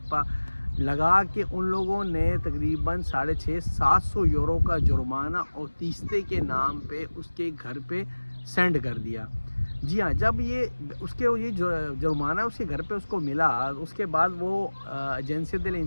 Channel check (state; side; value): inverted; both; correlation -1.00